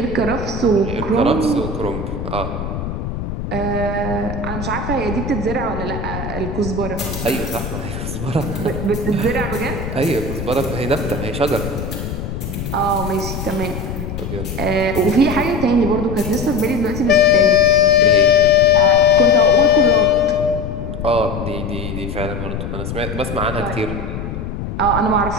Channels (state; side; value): noise; left; rumble, 6 dB below the sound